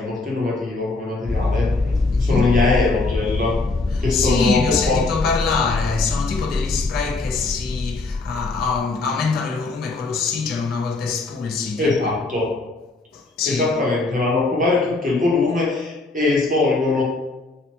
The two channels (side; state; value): right; quieter; 3.4 dB